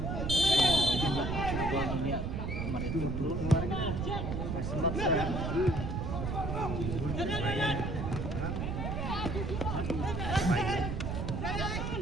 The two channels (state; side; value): noise; right; rumble, 2 dB below the sound